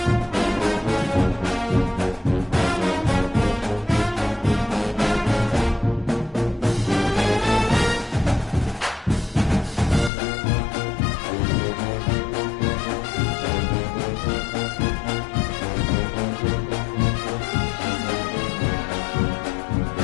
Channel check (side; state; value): right; drops out; at 10.1 s